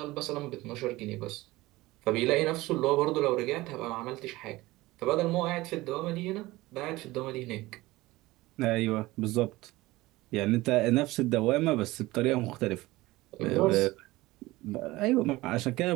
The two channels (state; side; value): quieter; left; 19.3 dB